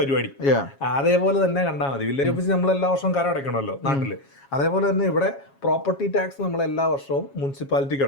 അതേപോലെ തന്നെ കണ്ടാൽ മതി. വില്ലേജ് ഓഫീസ് നമ്മൾ എല്ലാ വർഷവും കര അടയ്ക്കണമല്ലോ നാട്ടില്. അതേപോലെ തന്നെ ഇവിടെ പ്രോപ്പർട്ടി ടാക്സ് നമ്മൾ എല്ലാ വർഷവും മുനിസിപ്പാലിറ്റിക്ക്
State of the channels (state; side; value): late; right; 7.3 ms